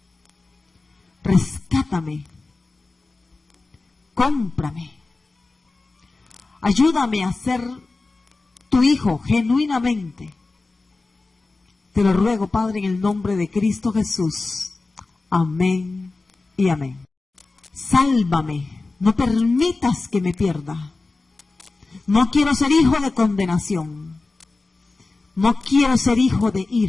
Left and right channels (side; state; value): right; quieter; 3.5 dB